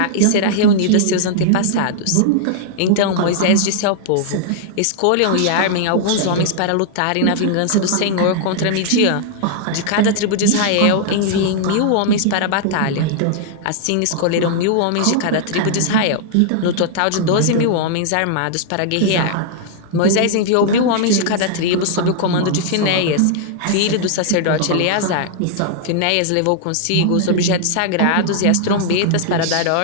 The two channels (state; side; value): different; both; correlation -0.01